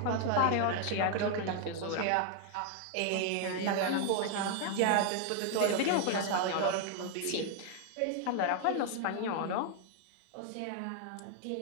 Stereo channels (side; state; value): both; different; correlation 0.00